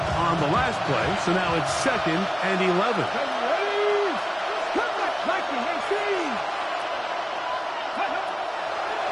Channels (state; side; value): identical; both; correlation 1.00